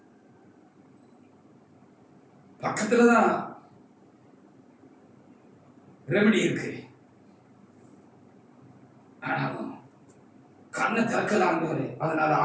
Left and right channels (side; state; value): both; identical; correlation 1.00